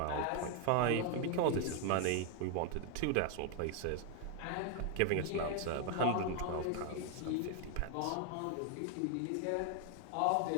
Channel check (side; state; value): both; different; correlation 0.00